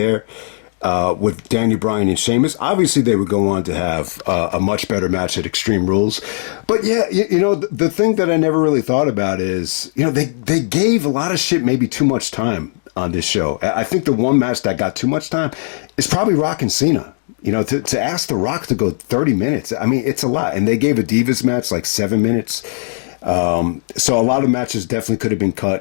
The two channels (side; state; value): right; silent; digital silence